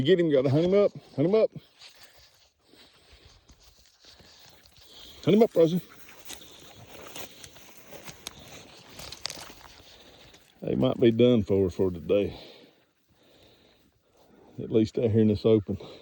get him, you gotta hunt him up. Hunt him up. Hunt him up, Rosie. They might be done for today. At least out here in this open.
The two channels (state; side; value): identical; both; correlation 1.00